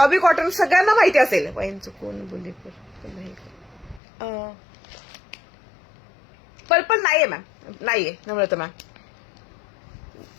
कॉटन सगळ्यांना माहिती असेल. वाईनचं कोण बोलले? पर्पल नाहीये मॅम. नाहीये नम्रता मॅम.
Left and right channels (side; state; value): right; drops out; at 4.0 s